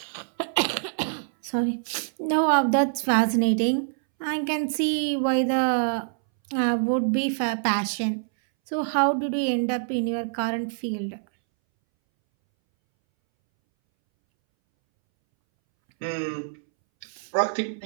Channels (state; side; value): silent; left; 62 dB below the other